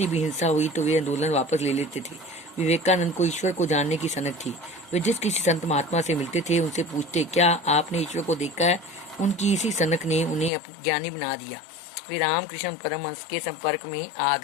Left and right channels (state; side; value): drops out; right; at 10.5 s